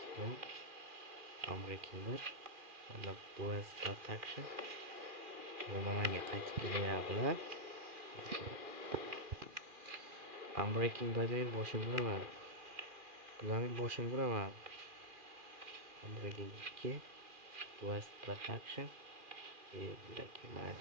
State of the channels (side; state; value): left; late; 2.4 ms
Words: Amerikaner. Mana Boys Protection. Nimaga qaytib kelyaptilar? Unbreaking Bad'ning boshini uraman. Bularning boshini uraman. Unbreaking 2. Boys Protection.